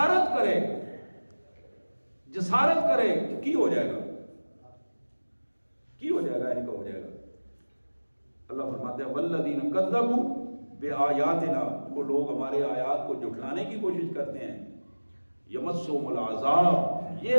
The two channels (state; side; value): inverted; both; correlation -1.00